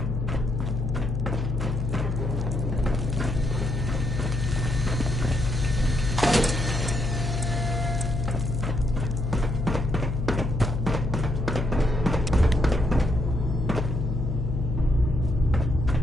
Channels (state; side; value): noise; left; hum, 2 dB below the sound